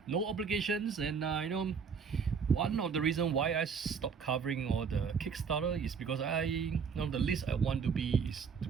No obligations, and one of the reasons why I stopped covering all the Kickstarter is because the least I want to be is to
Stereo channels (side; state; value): left; quieter; 6.1 dB